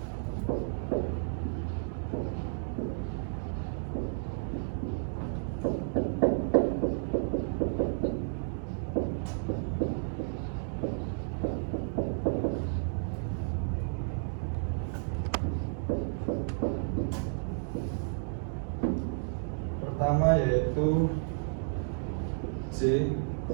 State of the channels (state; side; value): silent; left; digital silence